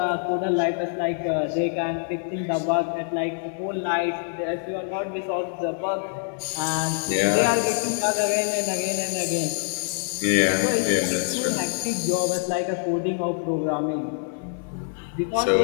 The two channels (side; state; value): right; silent; 56 dB below the other